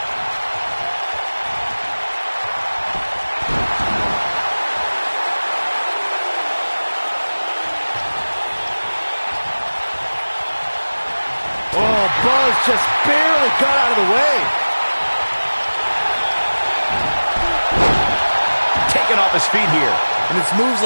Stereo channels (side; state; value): both; inverted; correlation -1.00